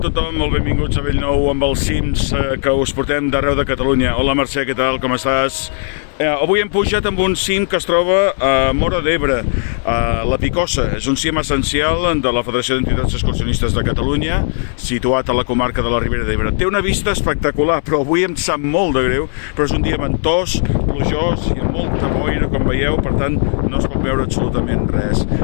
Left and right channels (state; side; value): silent; right; 63 dB below the other